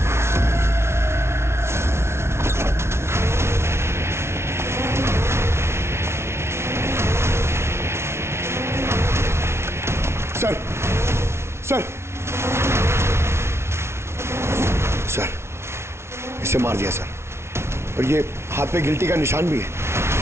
Sir sir sir, इसे मार दिया सर, और ये हाथ पे गिल्टी का निशान भी है।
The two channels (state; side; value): late; left; 0.13 ms